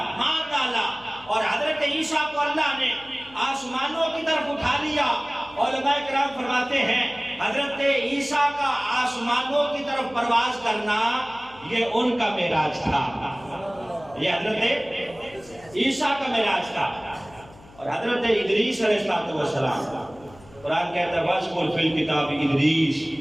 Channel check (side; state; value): left; noise; hum, 23 dB below the sound